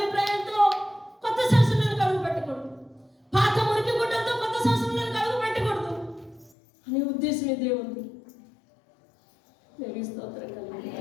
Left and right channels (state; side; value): drops out; right; at 6.5 s